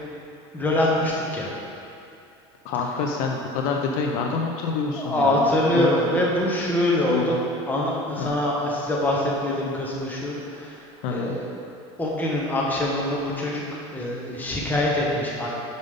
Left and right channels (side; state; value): both; normal; correlation 0.43